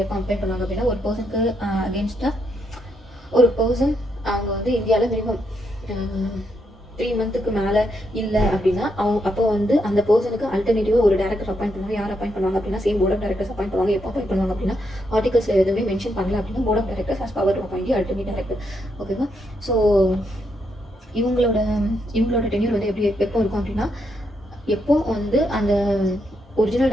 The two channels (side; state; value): both; normal; correlation 0.79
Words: எப்போ அப்பாயிண்ட் பண்ணுவாங்க அப்படின்னா ஒரு பர்சனுக்கு அகேன்ஸ்டாக ஒரு பர்சன் அவங்க வந்து இந்தியாவில் மினிமம் 3 மந்த்துக்கு மேலே இல்லை அப்படின்னா அப்போ வந்து அந்த பர்சனுக்கு அல்டர்னேட்டிவாக ஒரு டேரக்டர் அப்பாயிண்ட் பண்ணுவாங்க. யார் அப்பாயிண்ட் பண்ணுவாங்க அப்படின்னா same board of directors appoint பண்ணுவாங்க. எப்போ அப்பாயிண்ட் பண்ணுவாங்க அப்படின்னா ஆர்டிகல்ஸில் எதுவுமே மென்ஷன் பண்ணல அப்படின்னா board of directors has power to appoint alternate director. ஓகேவா? ஸோ இவங்களோட டென்யூர் வந்து எப்போ இருக்கும் அப்படின்னா எப்போ வந்து அந்த ஒரிஜினல்